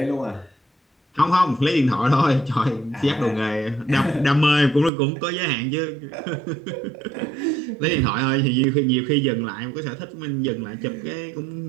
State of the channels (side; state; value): left; drops out; at 4.9 s